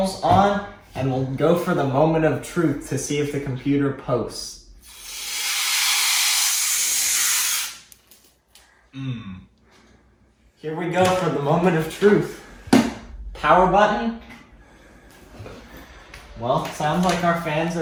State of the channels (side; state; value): both; identical; correlation 1.00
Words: on, and we'll go for the moment of truth to see if the computer posts. Here we go for the moment of truth. Power button. Well, sounds like our fans